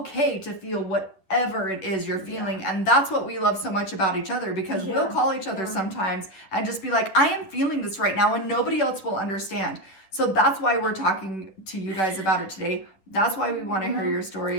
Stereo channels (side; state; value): right; late; 10 ms